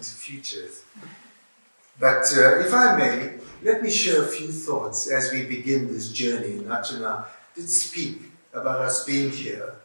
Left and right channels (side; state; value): both; inverted; correlation -1.00